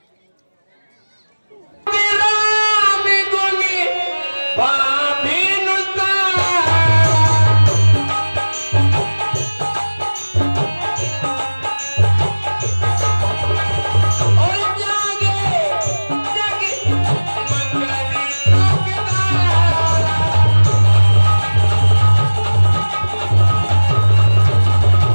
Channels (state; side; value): inverted; both; correlation -1.00